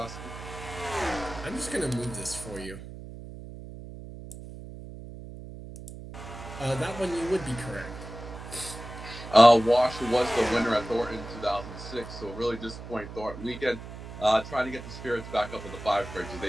week? I'm just going to move this for you. That one you would be correct. Washer was the winner at Thornton in 2006, so really disappointing Thornton weekend. Trying to get the spirits back up in the 5 car because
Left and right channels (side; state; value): right; noise; hum, 12 dB below the sound